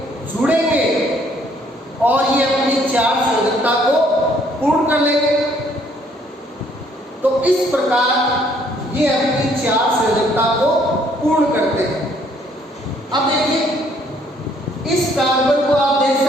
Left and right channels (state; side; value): normal; both; correlation 0.64